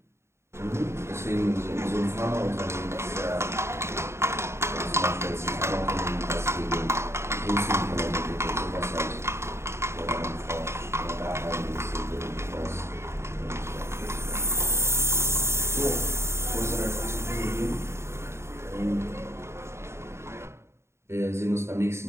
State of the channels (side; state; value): left; late; 0.13 ms